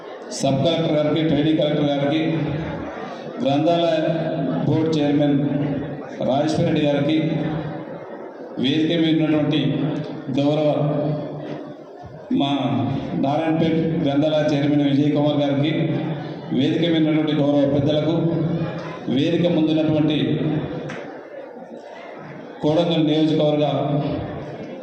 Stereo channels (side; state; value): both; identical; correlation 1.00